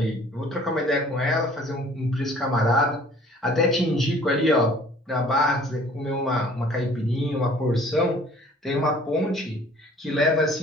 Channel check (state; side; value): normal; both; correlation 0.53